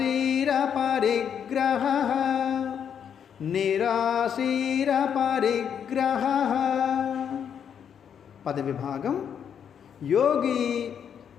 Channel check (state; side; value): quieter; right; 8.1 dB